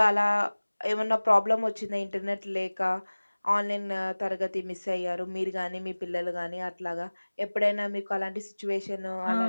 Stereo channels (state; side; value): inverted; both; correlation -1.00